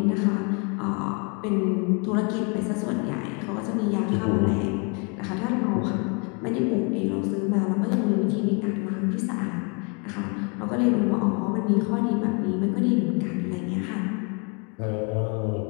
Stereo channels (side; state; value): right; quieter; 34.1 dB